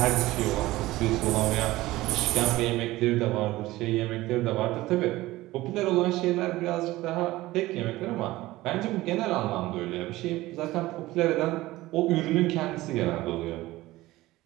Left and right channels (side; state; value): left; quieter; 17.9 dB